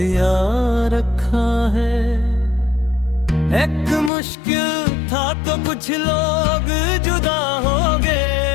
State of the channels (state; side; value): drops out; right; at 4.1 s